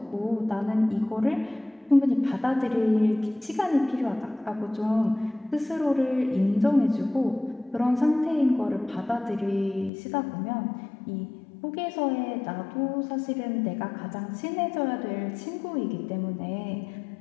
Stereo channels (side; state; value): right; drops out; at 9.9 s